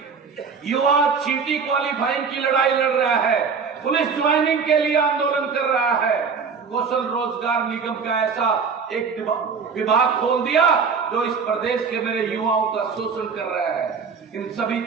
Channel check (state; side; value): quieter; left; 5.6 dB